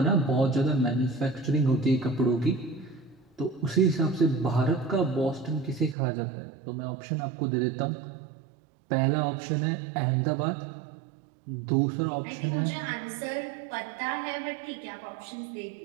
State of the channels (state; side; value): drops out; left; at 6.0 s